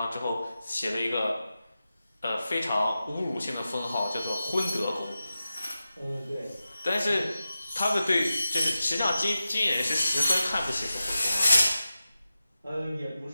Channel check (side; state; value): both; inverted; correlation -0.93